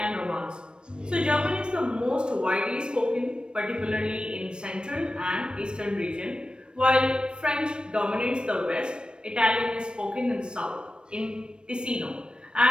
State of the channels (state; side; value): late; left; 0.054 ms